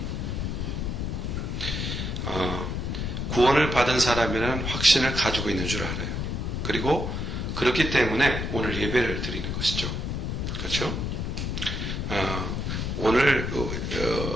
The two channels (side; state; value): left; noise; rumble, 2 dB below the sound